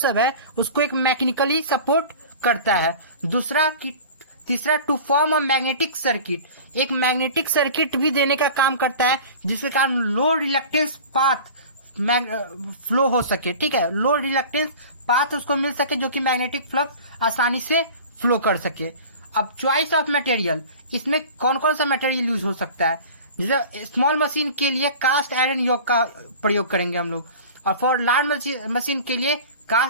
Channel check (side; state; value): both; inverted; correlation -0.39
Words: है, उसको एक मैकेनिकली सपोर्ट करता है। तीसरा to form a magnetic circuit, एक मैग्नेटिक सर्किट भी देने का काम करता है जिसके कारण लो रिलक्टेंस पाथ फ्लो हो सके। ठीक है, लो रिलक्टेंस पाथ उसको मिल सके जो कि मैग्नेटिक फ्लक्स आसानी से फ्लो कर सके। अब चॉइस ऑफ मटेरियल, इसमें कौन कौन सा मटेरियल यूज हो सकता है। जैसे स्मॉल मशीन के लिए कास्ट आयरन यॉक का प्रयोग करेंगे हम लोग, और फॉर लार्ज मशीन के लिए